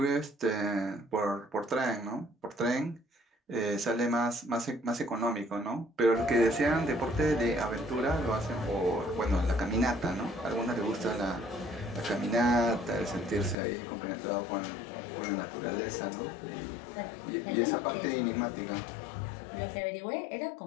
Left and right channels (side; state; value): right; drops out; at 13.6 s